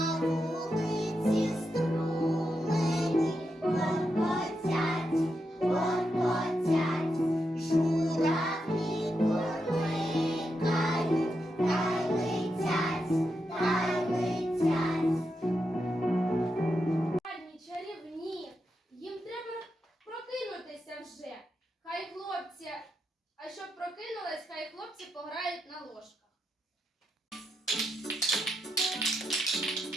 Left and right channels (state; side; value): normal; both; correlation 0.85